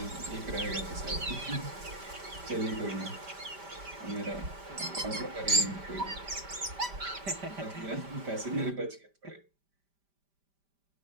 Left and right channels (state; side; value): late; left; 5.1 ms